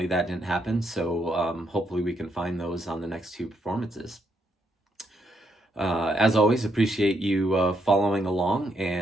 that didn't happen. So hopefully, we can find those on the next two performances. As always, appreciate you following along,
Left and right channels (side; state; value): both; normal; correlation 0.76